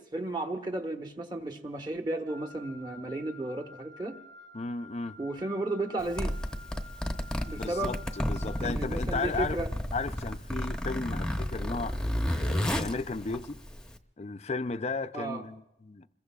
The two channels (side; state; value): both; normal; correlation 0.69